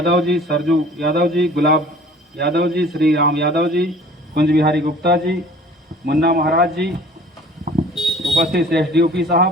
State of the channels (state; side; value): normal; both; correlation 0.48